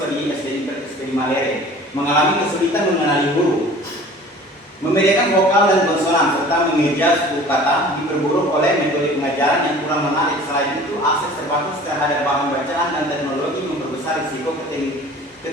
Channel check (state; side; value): normal; both; correlation 0.45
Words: di SD Malere, mengalami kesulitan mengenali huruf, membedakan vokal dan konsonan, serta mengeja suku kata, diperburuk oleh metode pengajaran yang kurang menarik. Selain itu, akses terbatas terhadap bahan bacaan dan teknologi memperbesar risiko